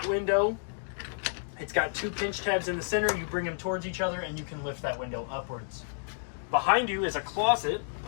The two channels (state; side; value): silent; right; digital silence